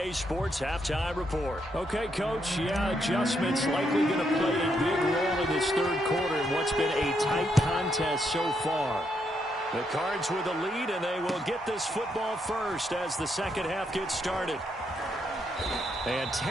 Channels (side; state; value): both; normal; correlation 0.77